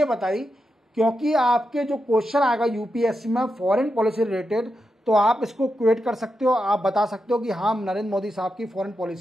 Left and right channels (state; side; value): normal; both; correlation 0.87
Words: बताई क्योंकि आपके जो क्वेश्चन आएगा यूपीएससी में फॉरेन पॉलिसी रिलेटेड, तो आप इसको क्वेट कर सकते हो। आप बता सकते हो कि हाँ, नरेंद्र मोदी साहब की फॉरेन